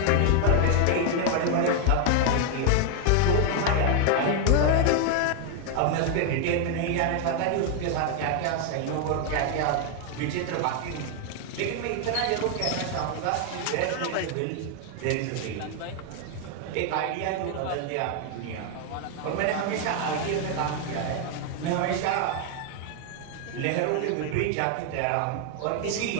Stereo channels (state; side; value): different; both; correlation 0.00